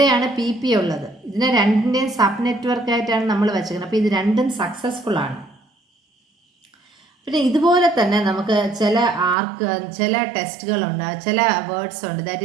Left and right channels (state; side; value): drops out; left; at 9.3 s